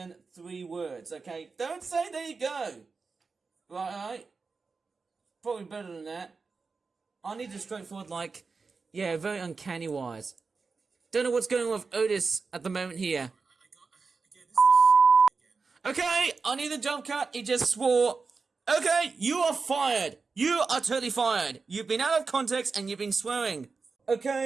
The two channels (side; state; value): left; quieter; 4.6 dB